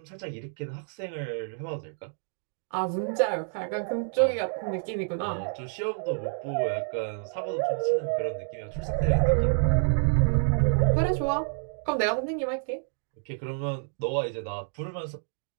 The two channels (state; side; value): silent; left; digital silence